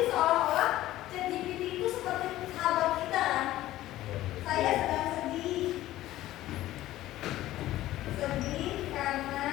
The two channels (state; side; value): quieter; right; 15.1 dB